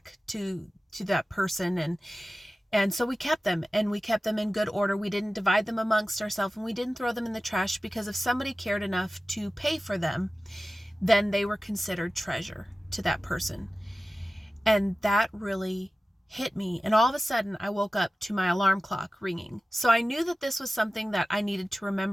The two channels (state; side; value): normal; both; correlation 0.95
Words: to that person. And so we kept them, and we kept them in good order. We didn't divide them amongst ourselves, and we didn't throw them in the trash, because if somebody cared enough to pay for them, then they were considered treasure to that person. And that really hit me. And all of a sudden I woke up to my alarm clock ringing. So I knew that this was something that I needed to